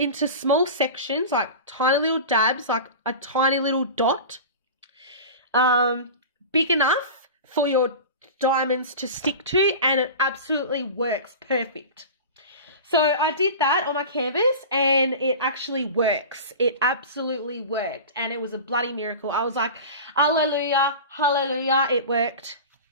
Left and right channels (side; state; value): both; inverted; correlation -0.32